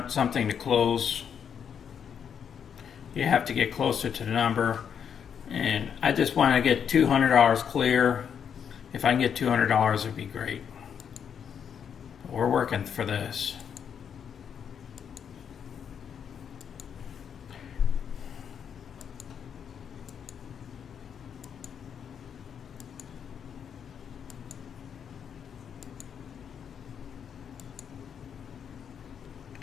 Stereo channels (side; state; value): right; quieter; 7.8 dB